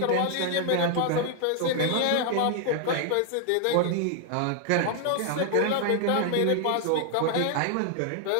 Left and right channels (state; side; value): different; both; correlation 0.00